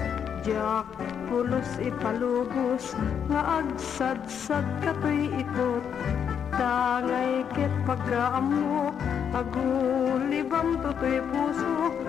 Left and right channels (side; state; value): right; quieter; 7.9 dB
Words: jak pulos ipalubos nga agsadsad katoy ikot. Tangay ket pagkaamok agulibam totoy puso,